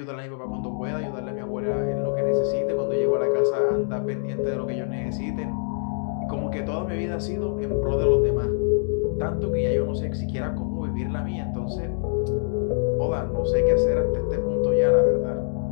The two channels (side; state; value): right; silent; digital silence